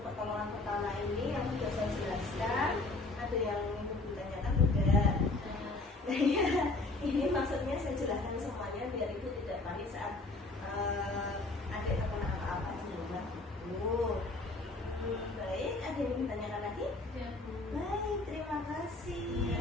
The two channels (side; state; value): right; quieter; 3.2 dB